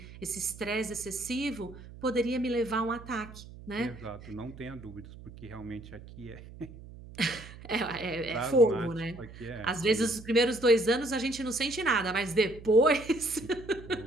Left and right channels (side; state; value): right; noise; hum, 16 dB below the sound